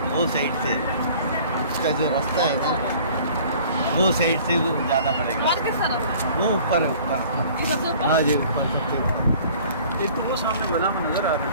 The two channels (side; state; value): both; inverted; correlation -0.50